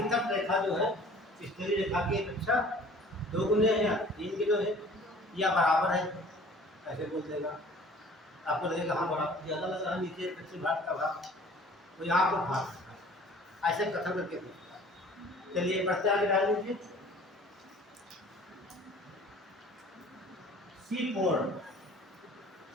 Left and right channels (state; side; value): normal; both; correlation 0.49